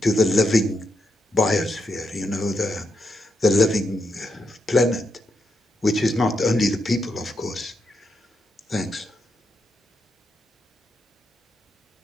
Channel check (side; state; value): both; normal; correlation 0.83